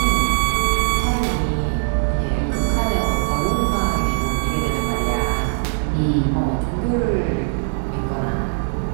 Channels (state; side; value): silent; left; digital silence